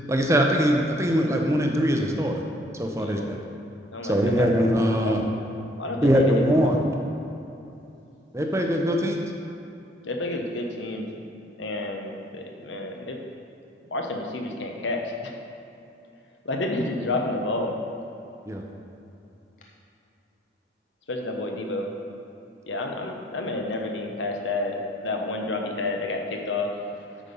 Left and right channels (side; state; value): both; normal; correlation 0.59